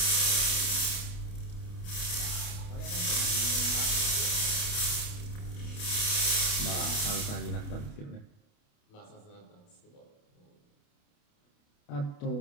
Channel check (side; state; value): right; late; 28 ms